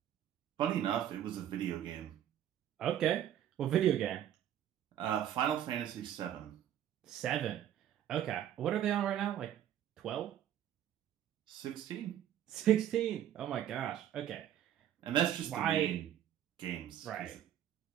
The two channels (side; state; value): left; quieter; 10.8 dB